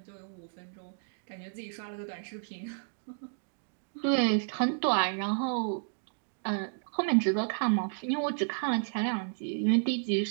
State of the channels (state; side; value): silent; left; digital silence